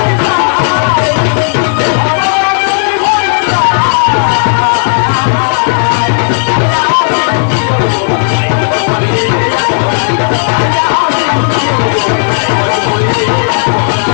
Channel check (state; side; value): silent; right; digital silence